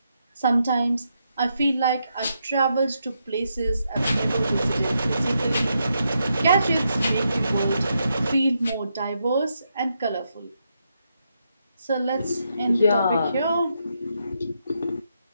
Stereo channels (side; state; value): both; inverted; correlation -0.81